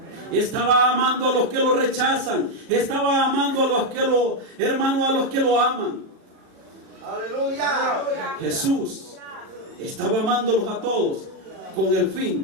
Estaba amando a los que lo rechazan, estaba amando a los que a los que lo aman. Aleluya. Jesús estaba amándolos a todos con el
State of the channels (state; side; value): late; left; 37 ms